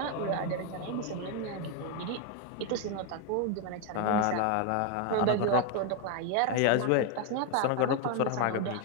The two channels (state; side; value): different; both; correlation 0.01